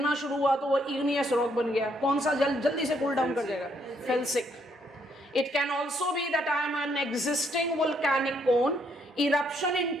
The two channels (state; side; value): normal; both; correlation 0.71